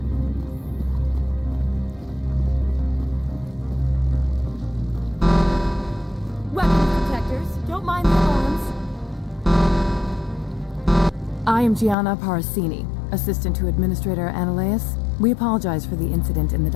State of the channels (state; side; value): drops out; right; at 12.0 s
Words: Weapons protectors, don't mind the alarms. I am Gianna Parasini, assistant to Administrator Ananias. We apologize for the incident in the